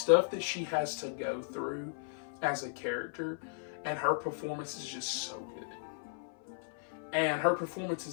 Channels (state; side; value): silent; right; 54 dB below the other